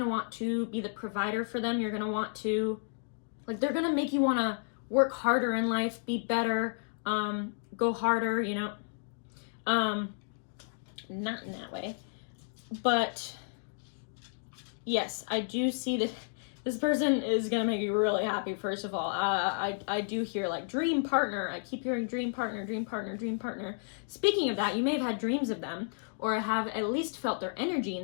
want to be the provider for them. You're gonna want to, like they're gonna make you wanna work harder in life, be better, go harder, you know. Not in that way, but yes, I do see that this person is gonna make you really happy. First of all, I do hear like dream partner. I keep hearing dream partner, dream partner, dream partner. Speaking of that, you may have had dreams of them or have at least felt their energy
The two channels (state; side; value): silent; right; digital silence